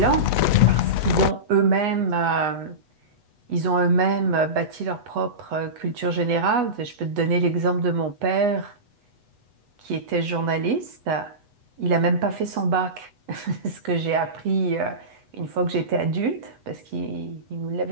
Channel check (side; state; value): left; late; 8.1 ms